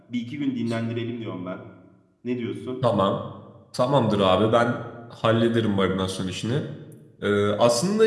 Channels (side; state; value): both; identical; correlation 1.00